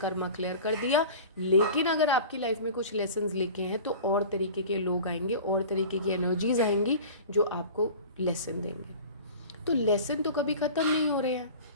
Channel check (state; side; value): inverted; both; correlation -0.39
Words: क्लियर कर दिया। लेकिन अगर आपकी लाइफ में कुछ लेसन्स लिखे हैं तो और तरीके के लोग आएंगे, और तरीके की एनर्जीज आएंगी जो आपको लेसन देंगे। तो लेसन तो कभी ख़त्म नहीं हो रहे हैं,